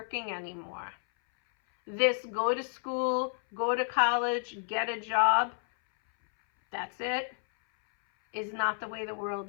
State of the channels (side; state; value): right; silent; 57 dB below the other